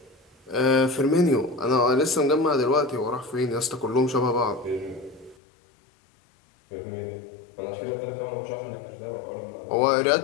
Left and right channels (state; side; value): drops out; right; at 5.4 s